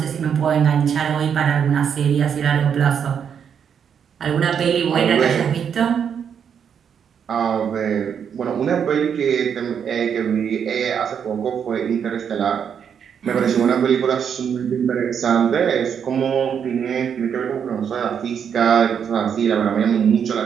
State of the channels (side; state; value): left; quieter; 7.7 dB